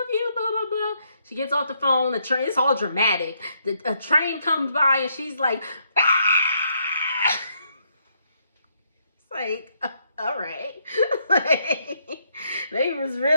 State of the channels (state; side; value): inverted; both; correlation -0.74